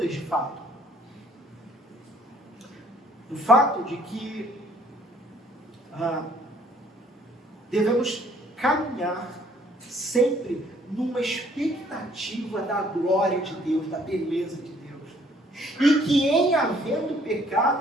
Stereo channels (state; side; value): normal; both; correlation 0.61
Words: de fato, do fato de que devemos caminhar sempre numa expectativa da glória de Deus, da beleza de Deus. E que em havendo